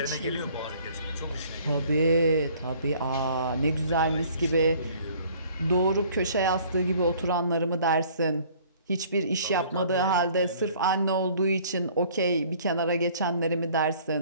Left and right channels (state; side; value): inverted; both; correlation -0.55